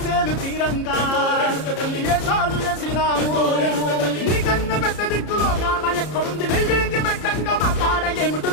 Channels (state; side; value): late; right; 33 ms